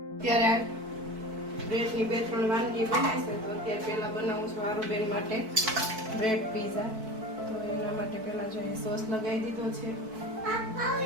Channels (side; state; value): left; late; 4.6 ms